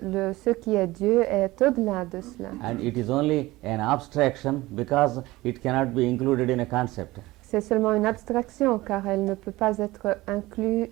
ce qui est Dieu est au-delà de cela. And it is only an abstraction because it cannot be included in a concept. C'est seulement une abstraction car elle ne peut pas être inclue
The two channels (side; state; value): left; quieter; 19.1 dB